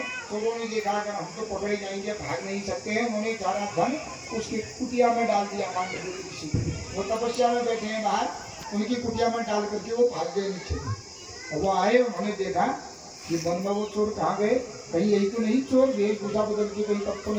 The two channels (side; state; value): both; identical; correlation 1.00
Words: तो उन्होंने देखा अगर हम तो पकड़े जाएंगे, भाग नहीं सकते हैं। उन्होंने सारा धन उसकी कुटिया में डाल दिया मांडव्य ऋषि। वो तपस्या में बैठे हैं बाहर, उनकी कुटिया में डाल करके वो भाग गए नीचे। और वो आए, उन्होंने देखा कि वन में वो चोर कहाँ गए, कहीं यही तो नहीं चोर वेशभूषा बदल के कहीं तब तो